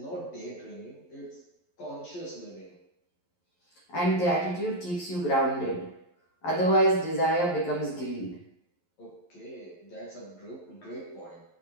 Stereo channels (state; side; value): late; right; 11 ms